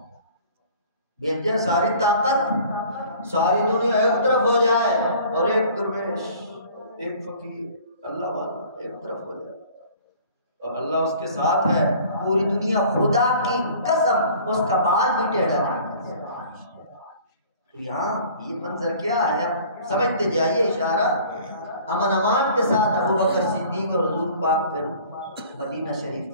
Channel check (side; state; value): both; inverted; correlation -0.49